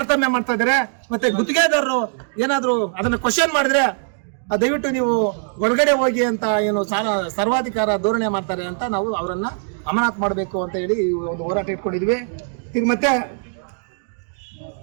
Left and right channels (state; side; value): silent; left; 59 dB below the other